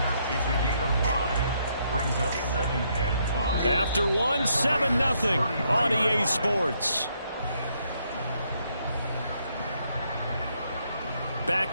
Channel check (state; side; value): inverted; both; correlation -0.73